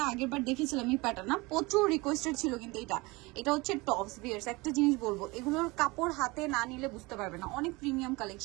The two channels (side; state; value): left; quieter; 24.1 dB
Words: আগের বার দেখেছিলাম, এই প্যাটার্ন না প্রচুর রিকোয়েস্টেড ছিল, কিন্তু এটা হচ্ছে টপস। ভিউয়ার্স একটা জিনিস বলবো, এগুলোর কাপড় হাতে না নিলে বুঝতে পারবে না, অনেক প্রিমিয়াম